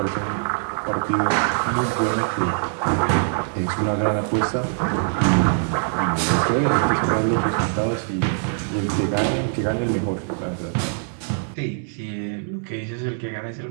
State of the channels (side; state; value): left; silent; 62 dB below the other